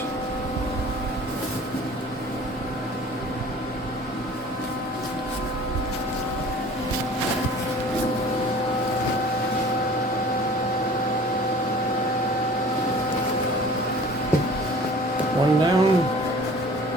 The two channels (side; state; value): both; normal; correlation 0.46